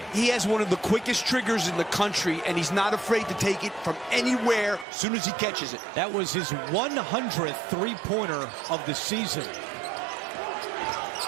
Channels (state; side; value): drops out; left; at 4.9 s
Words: He has one of the quickest triggers in the country, and he's not afraid to take it from anywhere as soon as he catches it. That was his 100th 3-pointer of the season.